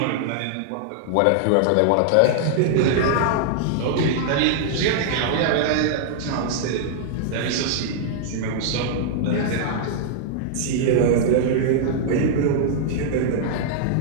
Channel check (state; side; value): different; both; correlation -0.01